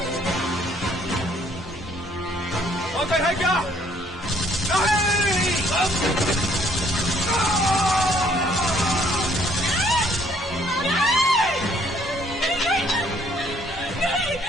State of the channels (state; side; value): normal; both; correlation 0.64